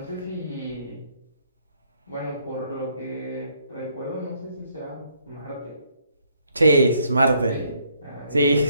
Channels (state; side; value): inverted; both; correlation -0.69